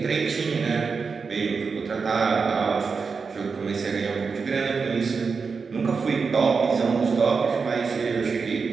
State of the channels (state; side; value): quieter; left; 5.1 dB